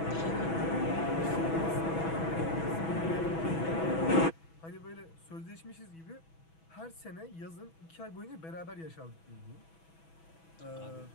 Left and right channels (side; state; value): right; late; 6.1 ms